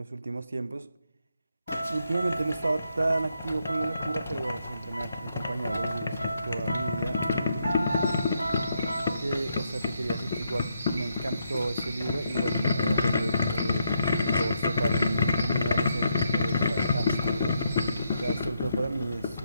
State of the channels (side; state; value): both; inverted; correlation -0.79